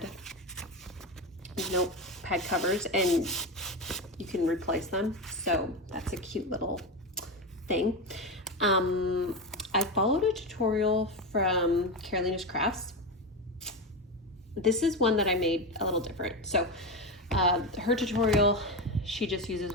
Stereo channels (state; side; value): normal; both; correlation 0.17